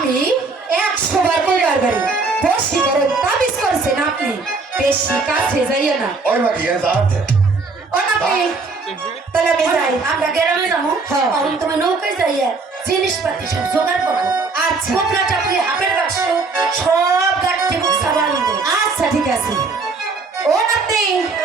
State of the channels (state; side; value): quieter; left; 4.0 dB